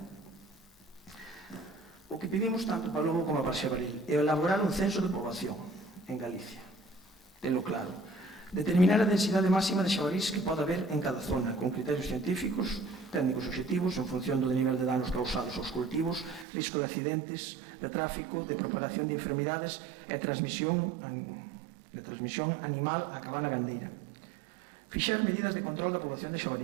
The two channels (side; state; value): left; drops out; at 16.4 s